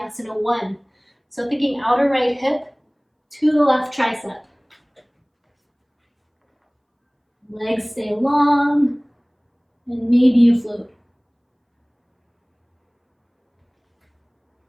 1. So thinking outer right hip to the left tricep. Legs stay long, and maybe you float.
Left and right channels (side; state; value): both; identical; correlation 1.00